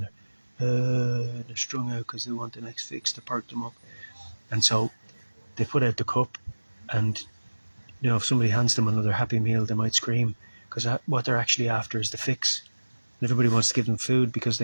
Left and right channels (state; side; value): inverted; both; correlation -1.00